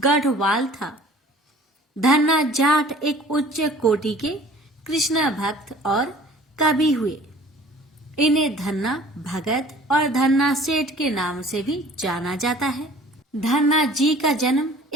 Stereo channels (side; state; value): both; normal; correlation 0.49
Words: था। धन्ना जाट एक उच्च कोटि के कृष्ण भक्त और कवि हुए। इन्हें धन्ना भगत और धन्ना सेठ के नाम से भी जाना जाता है। धन्ना जी का जन्म